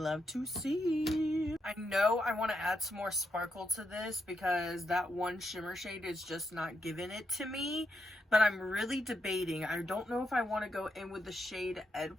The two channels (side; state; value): both; normal; correlation 0.82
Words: to see. I know I want to add some more sparkle to this because that one shimmer shade is just not giving it to me, but I'm really debating. I don't know if I want to go in with the shade